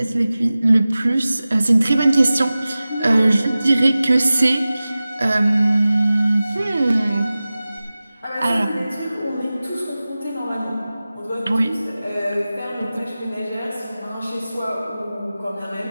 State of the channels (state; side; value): inverted; both; correlation -0.96